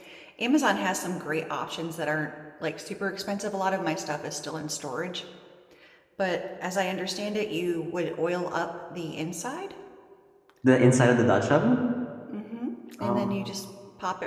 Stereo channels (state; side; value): identical; both; correlation 1.00